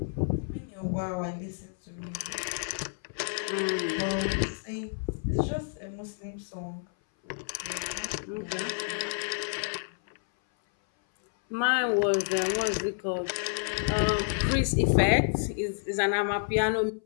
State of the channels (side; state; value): right; silent; 57 dB below the other